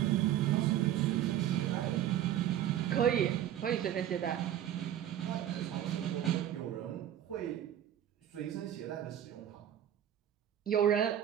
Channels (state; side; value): quieter; left; 11.1 dB